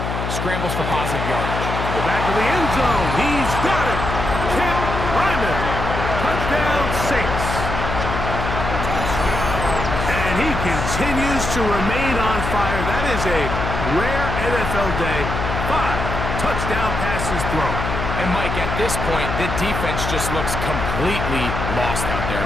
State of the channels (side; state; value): left; noise; hum, 3 dB below the sound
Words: scrambles for positive yardage. The back of the end zone. He's got it. Kent Ryman. Touchdown, Saints. And he continues to remain on fire. That is a rare NFL day. 5 touchdown passes thrown. And, Mike, at this point, the defense just looks completely lost out there. I